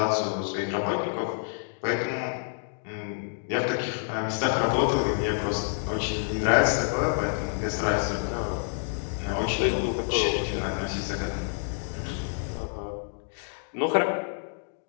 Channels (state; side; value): silent; right; digital silence